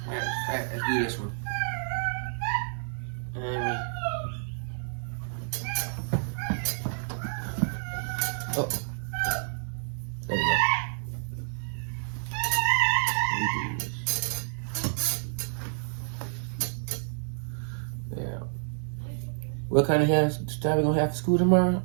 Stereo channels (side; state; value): left; silent; digital silence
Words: Matter of fact, let's do this one. Oh, there we go. Let me do this. Yeah. What kind of hairstyle we gonna have for school tomorrow?